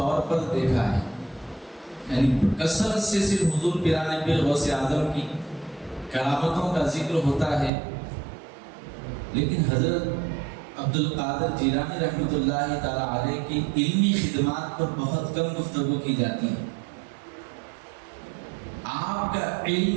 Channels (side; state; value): left; drops out; at 7.7 s